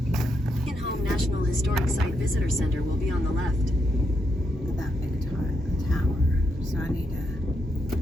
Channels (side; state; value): both; normal; correlation 0.81